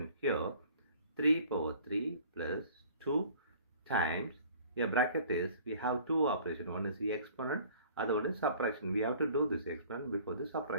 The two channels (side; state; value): both; inverted; correlation -0.51